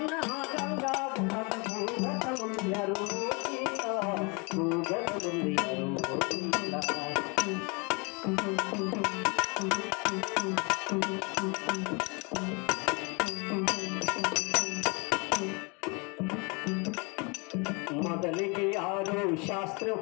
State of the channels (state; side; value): quieter; right; 30.7 dB